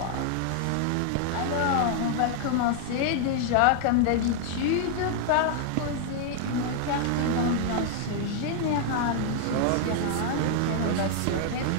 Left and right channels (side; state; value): both; different; correlation 0.00